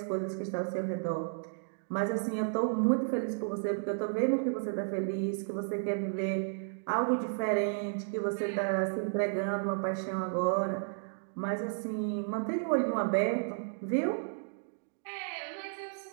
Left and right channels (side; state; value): left; silent; digital silence